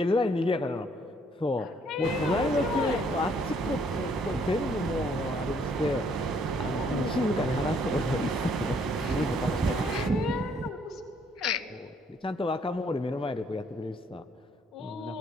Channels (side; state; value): both; normal; correlation 0.66